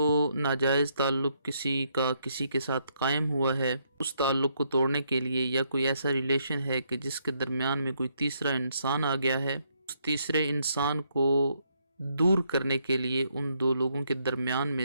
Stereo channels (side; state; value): both; inverted; correlation -0.74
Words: ناجائز تعلق کسی کے ساتھ قائم ہوا ہے، اس تعلق کو توڑنے کے لیے یا کوئی ایسا ریلیشن ہے کہ جس کے درمیان میں کوئی تیسرا انسان آ گیا ہے، اس تیسرے انسان کو دور کرنے کے لیے ان دو لوگوں کے درمیان میں